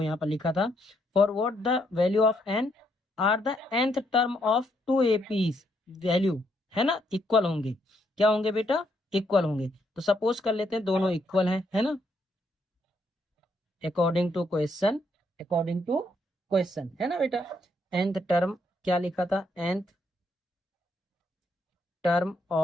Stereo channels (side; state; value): both; normal; correlation 0.74